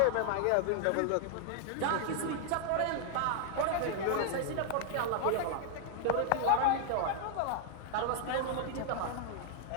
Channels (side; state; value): both; different; correlation 0.00